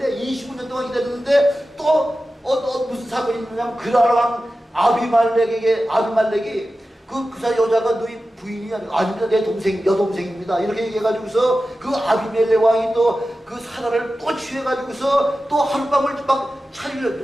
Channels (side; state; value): both; normal; correlation 0.94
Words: 25년 동안 기다렸는데 또 무슨 사건이 있느냐면 그랄 왕 아비말렉이 그 여자가 너희 부인이 아닙니다. 내 동생, 여동생입니다. 이렇게 얘기해가지고서 그 아비멜렉 왕이 또 그 사라를 또 취해가지고서 또 하룻밤을 막